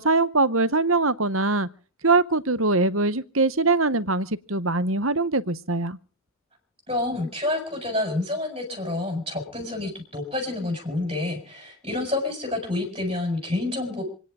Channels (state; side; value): normal; both; correlation -0.04